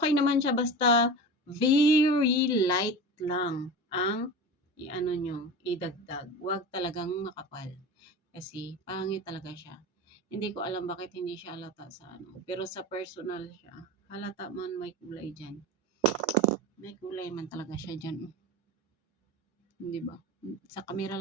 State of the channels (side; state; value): both; normal; correlation 0.30